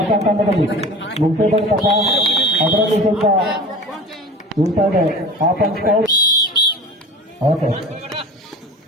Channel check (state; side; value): normal; both; correlation 0.37